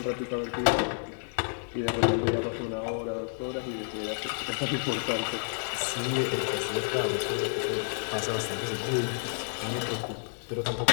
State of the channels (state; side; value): silent; right; digital silence